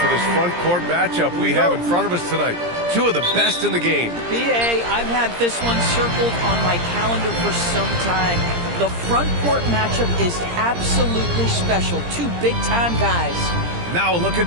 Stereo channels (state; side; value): late; left; 17 ms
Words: this front court matchup we have in front of us tonight? Two of the best in the game. BA, I've had this one circled on my calendar for some time. The front court matchup is absolutely special. Two big-time guys. Now a look